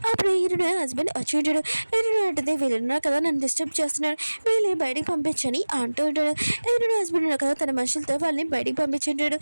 అప్పుడు ఈరుని హస్బెండ్ వచ్చి ఉంటాడు. ఈరుని అంటుంది, వీళ్ళున్నారు కదా నన్ను డిస్టర్బ్ చేస్తున్నాడు, వీళ్ళని బయటికి పంపించని అంటూ ఉంటాడు. ఈరుని హస్బెండ్ ఉన్నారు కదా తన మనుషులతో వాళ్ళని బయటికి పంపించుంటాడు.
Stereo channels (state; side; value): inverted; both; correlation -1.00